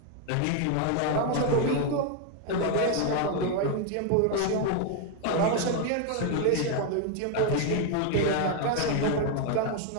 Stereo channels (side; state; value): both; different; correlation 0.01